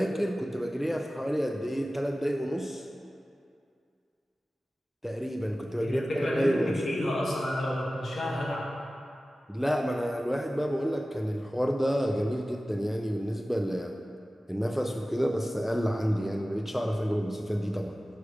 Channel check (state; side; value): normal; both; correlation 0.96